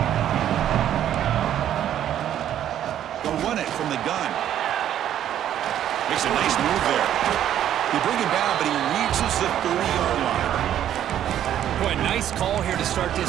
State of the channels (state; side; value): quieter; left; 10.9 dB